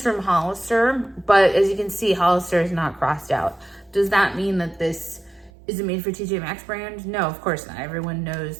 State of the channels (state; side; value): drops out; left; at 5.5 s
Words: from Hollister, but as you can see, Hollister is not crossed out. Does that mean that this is a made for TJ Maxx brand? No, of course not. Everyone